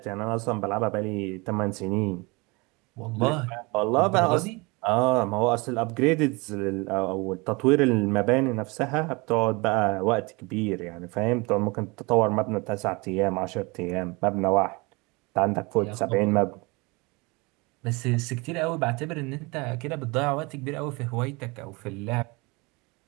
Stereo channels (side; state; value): left; quieter; 26.5 dB